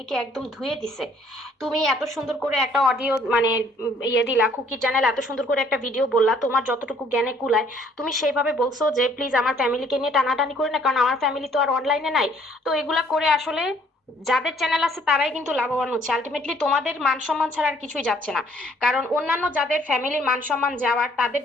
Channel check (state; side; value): normal; both; correlation 0.61